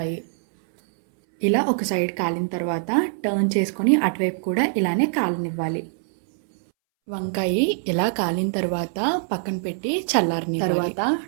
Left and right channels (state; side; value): silent; left; 63 dB below the other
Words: ఇలా ఒక సైడ్ కాలిన తర్వాత టర్న్ చేసుకొని అటువైపు కూడా ఇలానే కాలనివ్వాలి. వంకాయ ఇలా కాలిన తర్వాత పక్కన పెట్టి చల్లారని తర్వాత